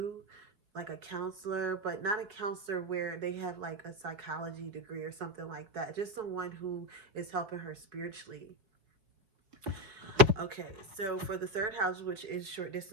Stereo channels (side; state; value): left; late; 4.8 ms